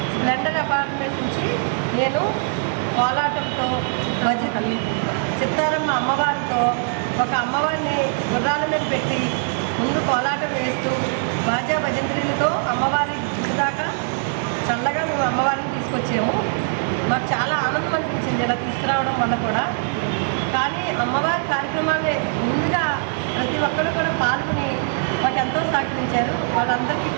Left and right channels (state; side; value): silent; left; digital silence